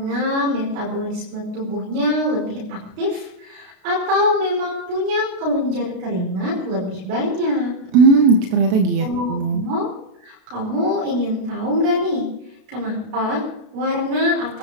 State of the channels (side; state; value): left; late; 32 ms